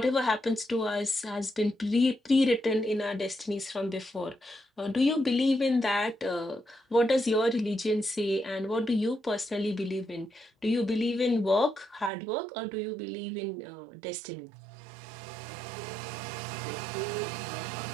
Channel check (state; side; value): drops out; left; at 12.1 s